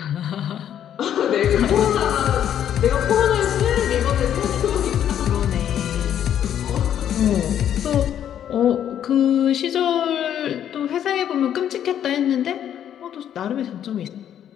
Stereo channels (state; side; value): quieter; right; 10.0 dB